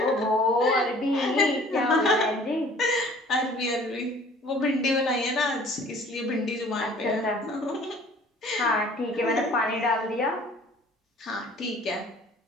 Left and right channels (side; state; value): both; normal; correlation 0.51